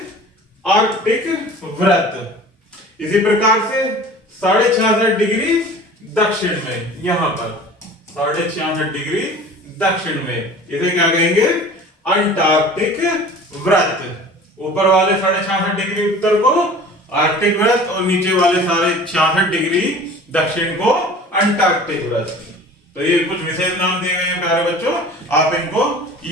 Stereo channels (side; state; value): both; normal; correlation 0.43